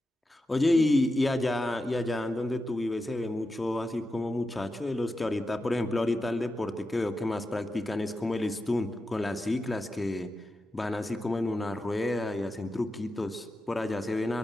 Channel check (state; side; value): normal; both; correlation 0.90